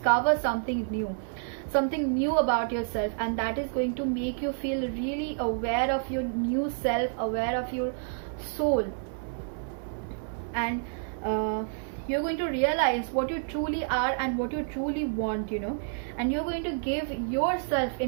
something new about yourself, and that is going to make you feel really aware of your new self, aware of your soul. And you're going to realize what you truly are and what you truly want. And you're going to give yourself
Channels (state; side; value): silent; left; digital silence